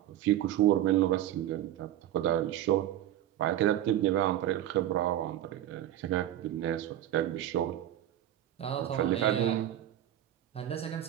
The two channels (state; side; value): quieter; left; 12.4 dB